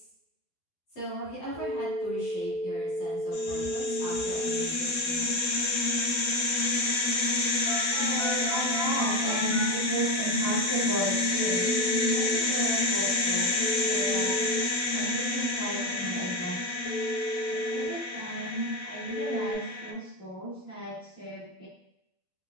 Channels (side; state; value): right; late; 12 ms